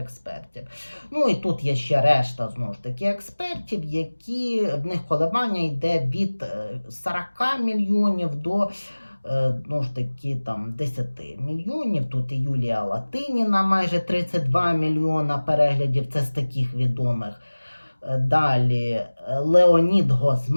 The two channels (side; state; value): both; inverted; correlation -1.00